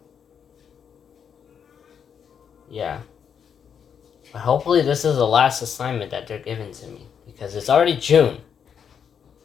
Yeah. But hopefully this is the last assignment that they're giving to me, because it's already June.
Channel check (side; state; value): right; quieter; 7.5 dB